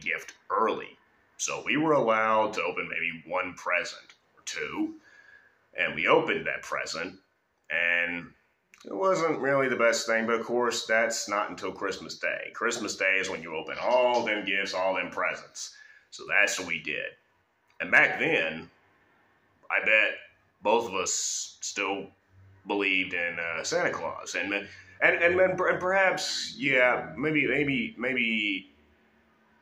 early. So we were allowed to open maybe one present or two, and we opened that present, and it wasn't really the best thing, but of course, that's not until Christmas Day. Christmas Day is when you open all them gifts, all them presents. So that's what we did. And back then, I bet both of us still believed in Santa Claus. And perhaps, yeah, maybe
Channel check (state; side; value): identical; both; correlation 1.00